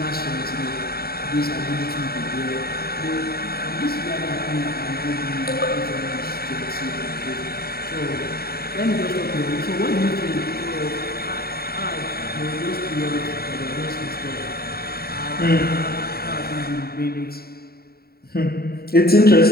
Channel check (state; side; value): late; right; 0.45 ms